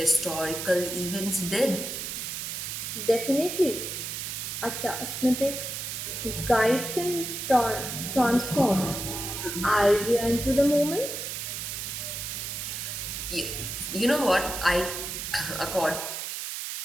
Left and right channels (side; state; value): right; noise; hiss, 5 dB below the sound